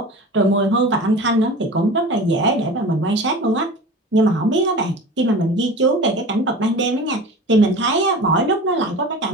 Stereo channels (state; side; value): normal; both; correlation 0.36